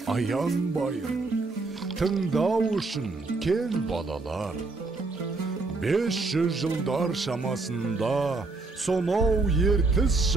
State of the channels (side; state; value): left; quieter; 3.6 dB